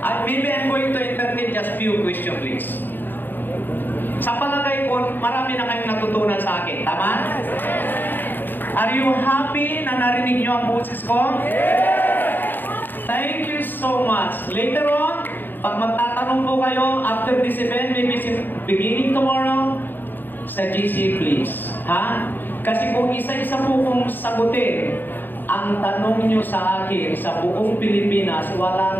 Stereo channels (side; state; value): right; late; 0.092 ms